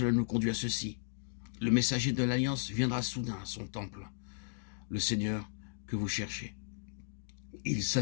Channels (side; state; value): right; silent; digital silence